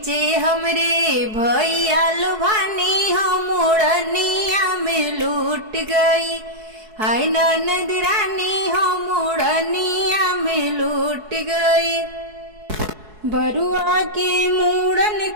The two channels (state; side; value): late; left; 4.7 ms